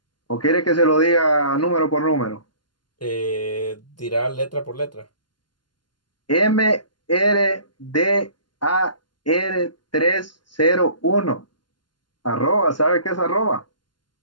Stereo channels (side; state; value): right; late; 0.71 ms